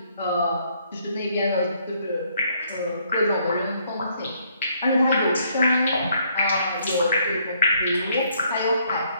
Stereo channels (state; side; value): inverted; both; correlation -0.68